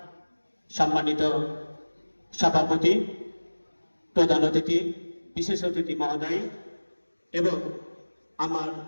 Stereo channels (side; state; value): both; inverted; correlation -1.00